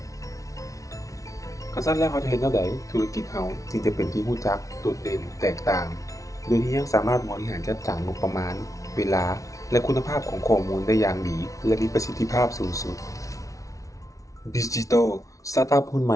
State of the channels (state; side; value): late; right; 0.16 ms